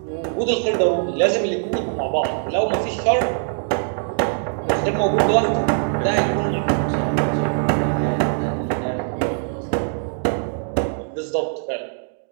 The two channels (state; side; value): silent; left; digital silence